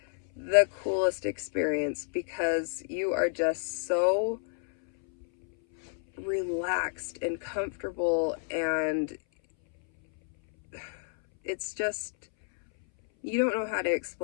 the coolest experience, because you are just so relaxed and comfortable, and it's just, you don't know how to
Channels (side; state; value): right; silent; 58 dB below the other